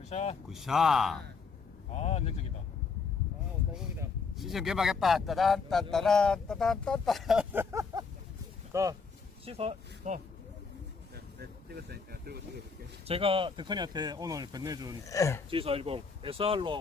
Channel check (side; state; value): right; quieter; 5.0 dB